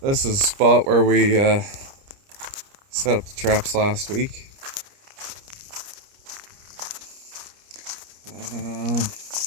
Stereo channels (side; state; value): left; late; 29 ms